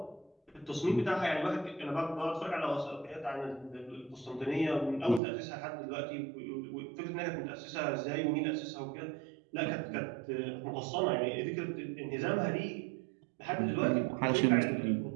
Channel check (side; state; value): left; drops out; at 5.2 s